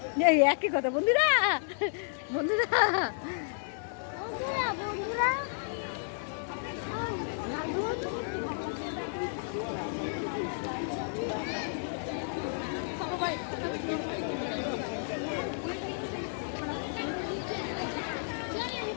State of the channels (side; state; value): right; silent; digital silence